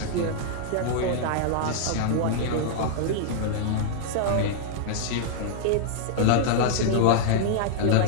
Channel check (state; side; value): different; both; correlation -0.01